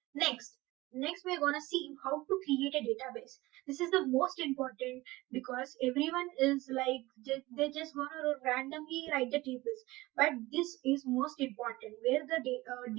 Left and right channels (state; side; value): quieter; left; 19.9 dB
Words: Next, we're gonna see how to create a database. This is the most important because everyone is like they're just gonna randomly write the tables, but this is most important where the